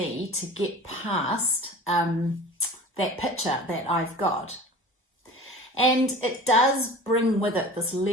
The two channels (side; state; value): both; normal; correlation 0.39